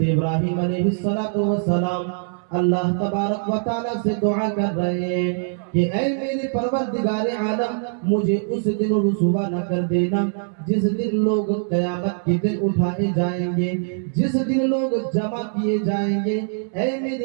ابراہیم علیہ السلام اللہ تبارک و تعالیٰ سے دعا کر رہے ہیں کہ اے میرے پروردگار عالم مجھے اس دن رسوا نہ کر دینا جس دن لوگ قیامت کے دن اٹھائے جائیں گے، جس دن لوگ جمع کیے جائیں گے۔ اے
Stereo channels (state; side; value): silent; left; 64 dB below the other